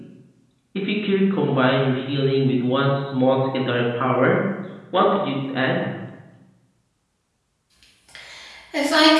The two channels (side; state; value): both; identical; correlation 1.00